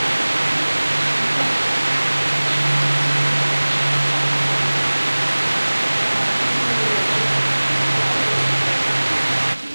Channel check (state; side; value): inverted; both; correlation -1.00